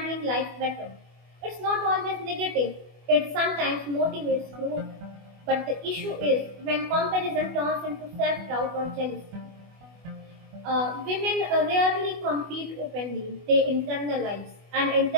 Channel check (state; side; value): late; left; 24 ms